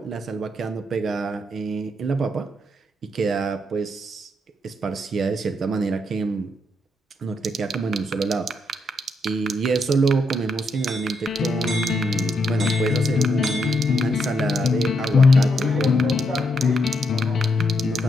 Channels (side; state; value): both; normal; correlation 0.78